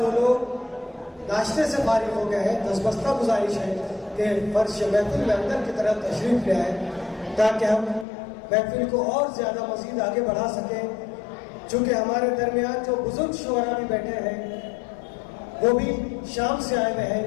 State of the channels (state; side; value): drops out; right; at 8.1 s